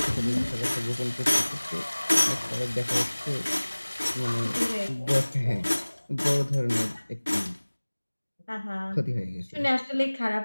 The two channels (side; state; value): both; inverted; correlation -1.00